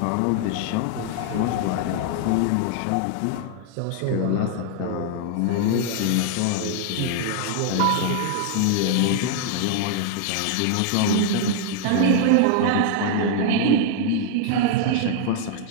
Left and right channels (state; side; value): different; both; correlation 0.00